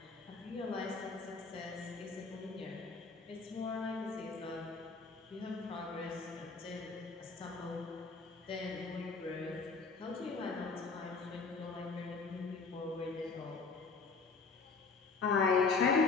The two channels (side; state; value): right; quieter; 4.5 dB